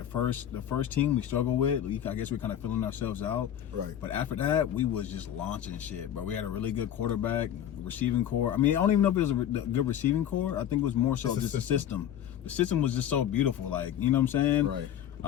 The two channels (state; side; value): quieter; right; 10.4 dB